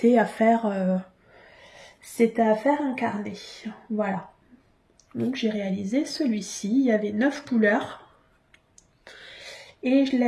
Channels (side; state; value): both; identical; correlation 1.00